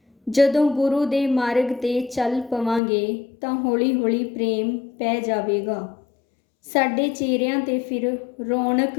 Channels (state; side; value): drops out; right; at 2.8 s